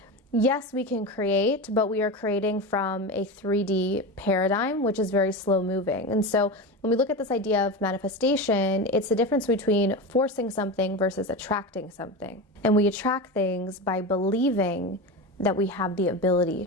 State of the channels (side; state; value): both; normal; correlation 0.22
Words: yes, we can create, but we are creating from a 3D paradigm, which is very slow moving. And so when we look at this idea of manifestation, it's the difference between forcing something versus attracting something. And we attract things by believing that we have the ability